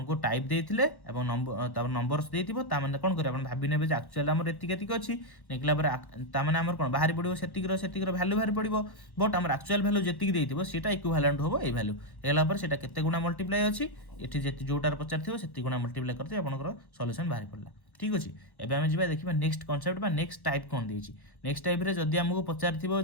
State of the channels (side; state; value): right; late; 1.1 ms